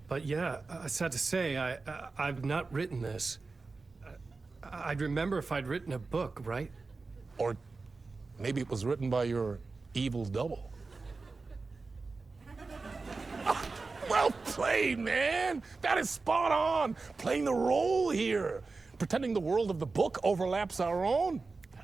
But yeah, sad to say, I've not written this. I'd remember if I'd written a book, right? Or maybe it was written by your evil double. Well played, man! That is spot on! Playing the role here. Pretending the world of the book overlaps our own.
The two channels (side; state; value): left; quieter; 4.0 dB